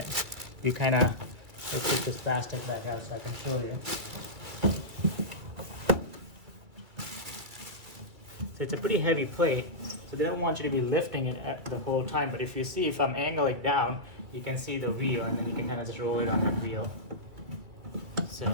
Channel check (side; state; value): left; late; 2.4 ms